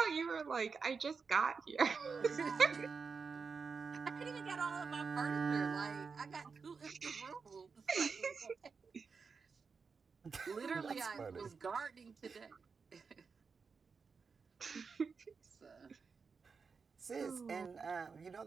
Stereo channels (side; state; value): left; quieter; 5.2 dB